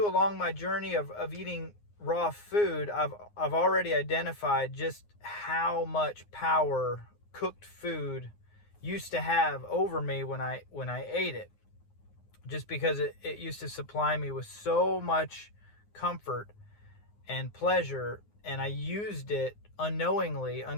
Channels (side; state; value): right; late; 9.6 ms